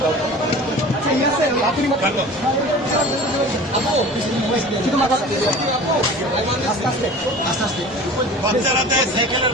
বাচ্চারা দেয় সাইকেলের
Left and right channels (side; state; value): both; normal; correlation 0.40